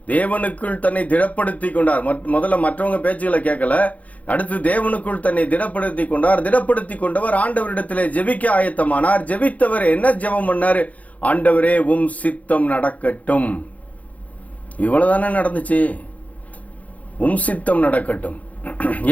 தேவனுக்குள் தன்னை திடப்படுத்தி கொண்டார். முதல்ல மற்றவங்க பேச்சுகளை கேட்கல. அடுத்து தேவனுக்குள் தன்னை திடப்படுத்தி கொண்டார். திடப்படுத்தி கொண்டவர் ஆண்டவரிடத்திலே ஜெபிக்க ஆயத்தமானார். ஜெபித்தவர் என்ன ஜெபம் பண்ணாரு? ஆண்டவரே உம் சித்தம் நடக்கட்டும். இவ்வளவுதானே நடந்துச்சு. உம் சித்தம் நடக்கட்டும்.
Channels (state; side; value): late; right; 0.071 ms